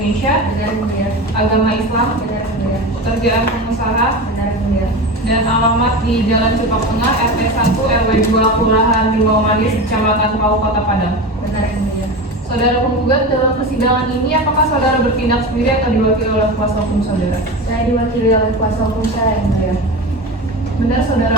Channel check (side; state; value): both; normal; correlation 0.26